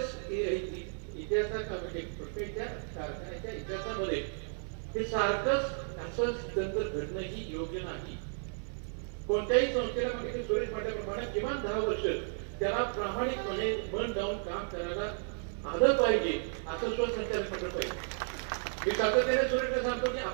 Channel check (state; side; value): silent; left; 55 dB below the other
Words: इतिहासात म्हणजे पुष्कळच्या कारखान्याच्या इतिहासामध्ये हे सारखंच असं तंत्र घडणंही योग्य नाही. कोणत्याही संस्थेला म्हणजे सुरेश म्हटल्याप्रमाणे किमान 10 वर्ष त्याला प्रामाणिकपणे मन लावून काम करायला आलं पाहिजे, असं स्वसंचालित मंडळ पाहिजे. मी सातत्याने सुरेशला सांगतो की